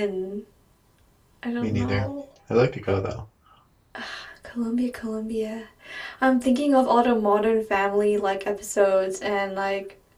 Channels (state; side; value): identical; both; correlation 1.00